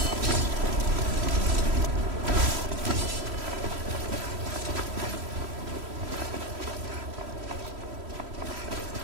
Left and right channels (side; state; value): left; late; 3.1 ms